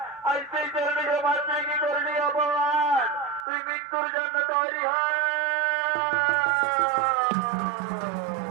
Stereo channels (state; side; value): drops out; left; at 3.5 s